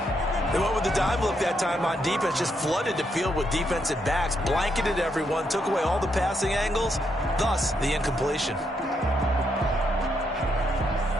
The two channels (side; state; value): both; normal; correlation 0.78